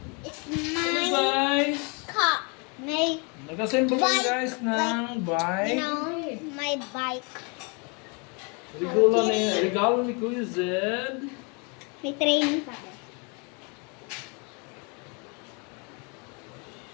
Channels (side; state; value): right; quieter; 33.1 dB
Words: It's Hello my guys! car. My, Nag-assemble kami Bike. guys ng bike. my bike. Regalo ni Kuya Zed. May training pa.